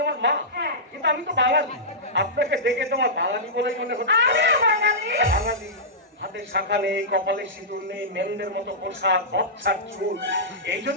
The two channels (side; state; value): both; normal; correlation -0.15